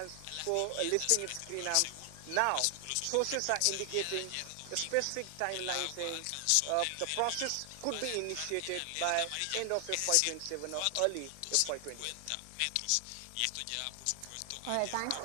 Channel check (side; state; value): both; different; correlation 0.00